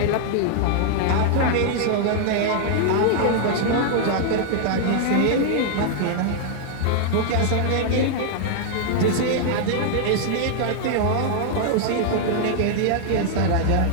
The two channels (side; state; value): both; different; correlation -0.01